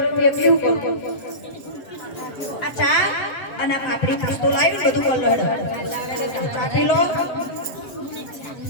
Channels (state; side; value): late; right; 7.8 ms